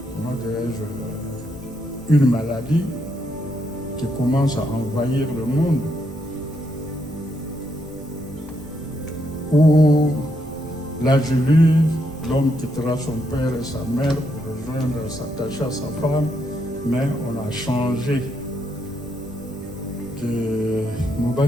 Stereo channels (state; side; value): noise; right; rumble, 20 dB below the sound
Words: dirais-je, une maladie qui commence à envahir le monde, où l'âge lu, l'homme quittera son père et sa mère pour rejoindre, s'attacher à sa femme, mais on a changé. Que